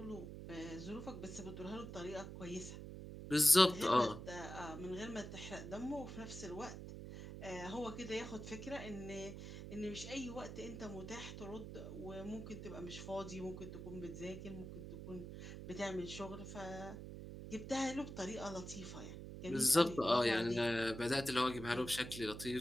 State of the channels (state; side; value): noise; right; hum, 9 dB below the sound